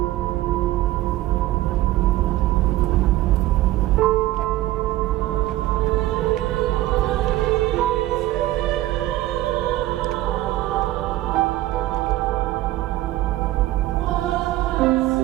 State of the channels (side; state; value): left; quieter; 15.9 dB